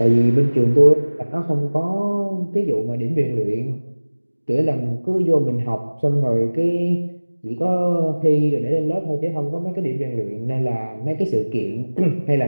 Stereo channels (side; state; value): both; inverted; correlation -1.00